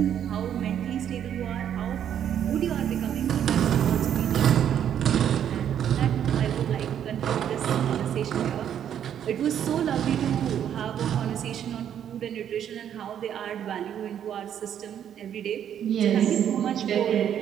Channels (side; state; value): left; quieter; 9.5 dB